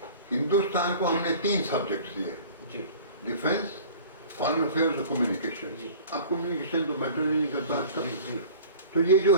हिंदुस्तान को हमने 3 सब्जेक्ट्स दिए, जी डिफेंस, फॉरेन अफेयर्स और कम्युनिकेशन। जी। अब कम्युनिकेशन तो मैटर नहीं करता आजकल। जी जी तो ये जो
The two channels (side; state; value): both; inverted; correlation -0.43